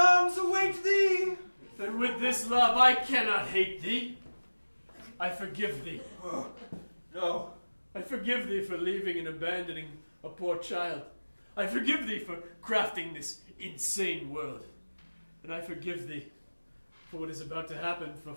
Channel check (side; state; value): both; inverted; correlation -1.00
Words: await thee. Then with this love I cannot hate thee. I forgive thee. No. I forgive thee for leaving and abandoning a poor child. I forgive thee for crafting this insane world. And I forgive thee for what is about to happen, for